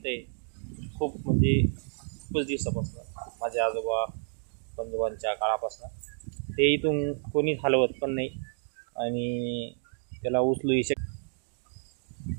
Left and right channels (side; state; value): left; silent; digital silence